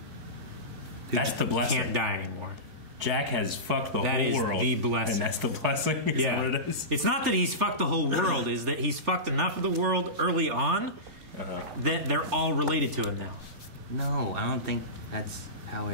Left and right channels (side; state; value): left; late; 3.4 ms